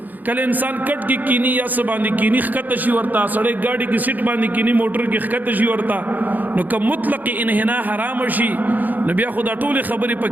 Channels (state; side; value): late; left; 0.083 ms